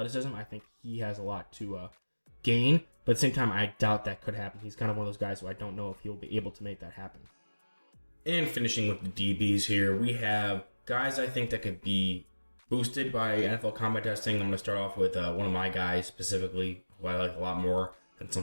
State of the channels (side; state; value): both; inverted; correlation -1.00